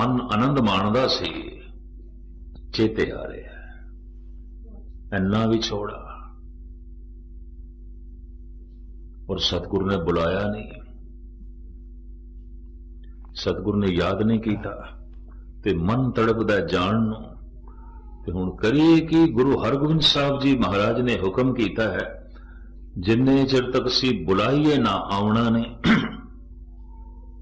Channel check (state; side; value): identical; both; correlation 1.00